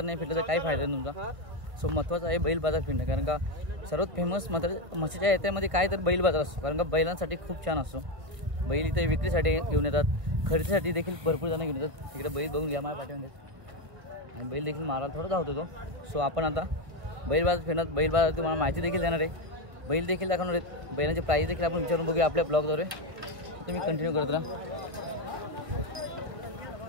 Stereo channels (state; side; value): late; left; 1.7 ms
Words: नाही फिरलं तर काही फायदा नाही तुमचा. सो महत्त्वाचं आहे बैल बाजार फिरणं. कारण का सर्वात फेमस मात्र मत्स्याच्या यात्रेमध्ये काय तर बैल बाजार असतो. कारण का बैलांसाठी खूप छान असतो. बैल इथे विक्रीसाठी घेऊन येतात, खरेदीसाठी देखील भरपूर जण घेऊन येतात. इकडे बैल बघून घ्या माझ्या पाठीमध्ये. आणि बैल देखील मारायला थोडा धावतो तो. सो आपण आता बैल बाजार फिरणार. बैल बाजार तुम्हाला माहिती देखील देणार आहे. बैल देखील दाखवणार आहेत, बैलांचे प्राईस देखील आपण विचारून बघूया आपल्या ब्लॉगद्वारे. तुम्ही कंटिन्यू करत राहा.